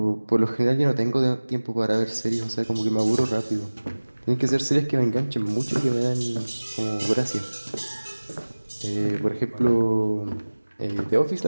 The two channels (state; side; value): inverted; both; correlation -1.00